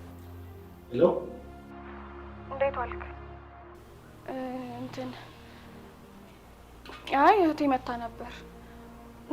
ሄሎ፣ እንዴት ዋልክ? አይ እህቴ መታ ነበር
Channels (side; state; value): both; identical; correlation 1.00